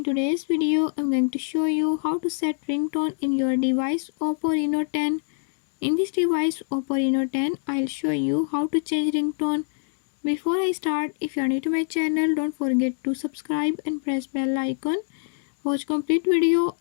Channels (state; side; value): silent; right; digital silence